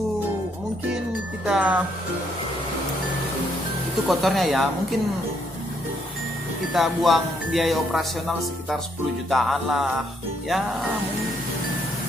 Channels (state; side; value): normal; both; correlation 0.72